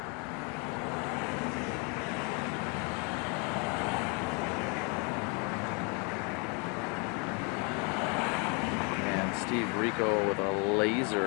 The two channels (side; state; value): right; quieter; 33.5 dB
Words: Steve Rico with a